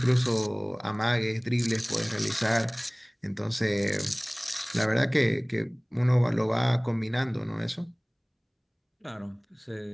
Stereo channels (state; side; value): identical; both; correlation 1.00